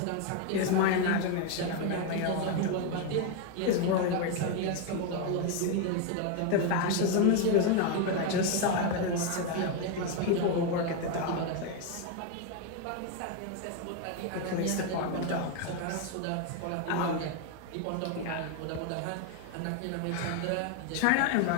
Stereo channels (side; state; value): both; different; correlation 0.01